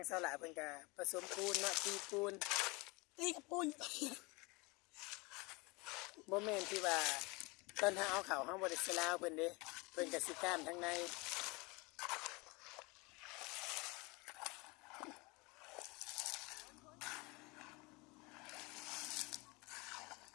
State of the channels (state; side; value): quieter; right; 26.3 dB